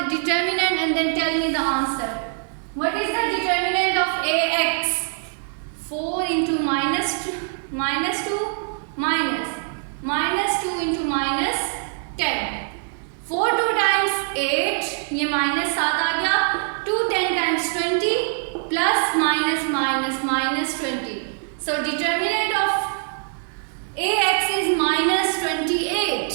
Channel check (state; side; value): silent; left; 63 dB below the other